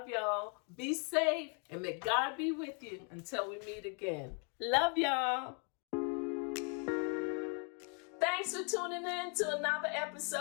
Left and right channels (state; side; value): quieter; right; 37.6 dB